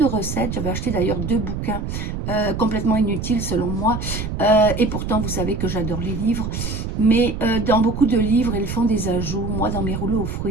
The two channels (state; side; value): noise; right; rumble, 4 dB below the sound